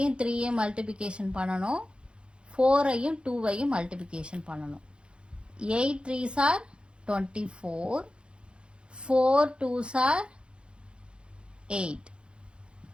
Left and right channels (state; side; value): late; left; 0.056 ms